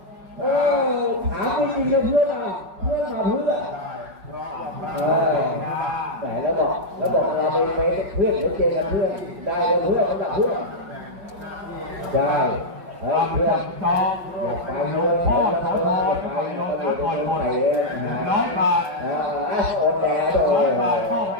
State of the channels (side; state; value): left; late; 5.4 ms